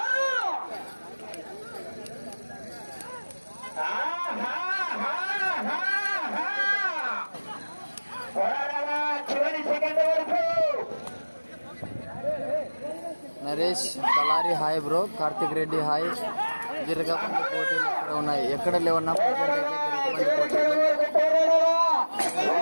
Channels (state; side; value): inverted; both; correlation -1.00